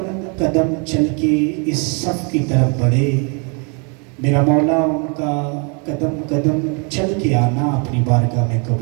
قدم چل کے اس صف کی طرف بڑھے، میرا مولا ان کا قدم قدم چل کے آنا اپنی بارگاہ میں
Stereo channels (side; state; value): left; quieter; 35.6 dB